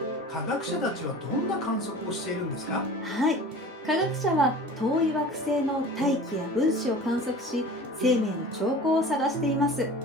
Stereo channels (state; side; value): normal; both; correlation 0.39